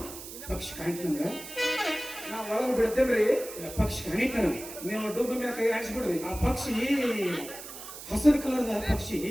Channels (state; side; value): noise; right; hiss, 12 dB below the sound